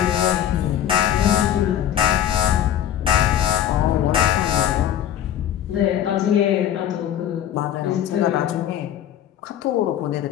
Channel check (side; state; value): right; quieter; 10.7 dB